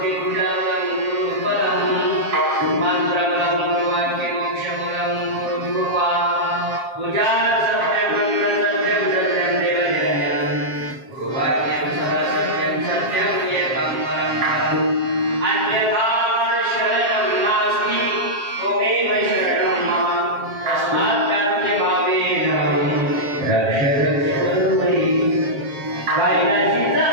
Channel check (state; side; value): late; left; 7.4 ms